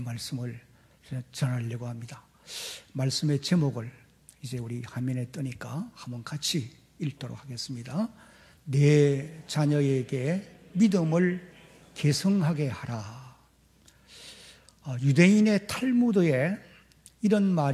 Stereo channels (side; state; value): both; identical; correlation 1.00